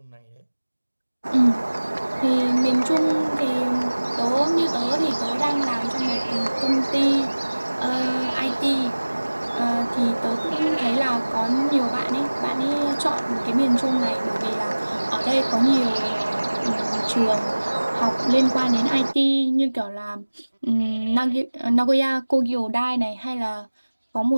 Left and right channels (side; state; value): both; inverted; correlation -1.00